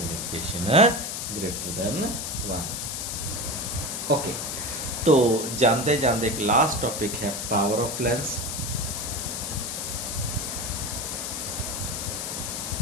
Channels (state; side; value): noise; left; hiss, 4 dB below the sound